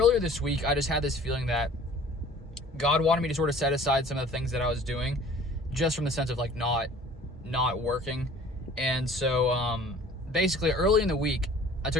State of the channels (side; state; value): both; normal; correlation 0.49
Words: this week, I just had this feeling that God wanted me to sort of set aside some of the things that I was doing, just from the sense of like not working. And so basically early in the week, I